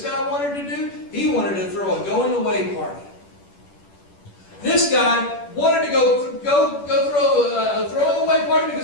guy wanted to do? He wanted to throw a going away party. This guy wanted to go throw a throwing away party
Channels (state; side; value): late; right; 10 ms